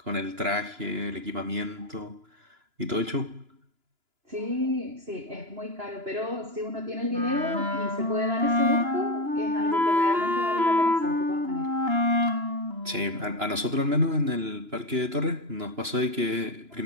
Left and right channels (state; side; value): late; left; 2.9 ms